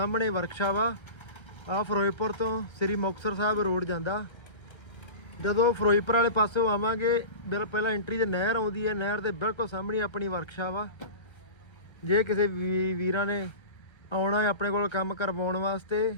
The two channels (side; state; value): right; late; 1.3 ms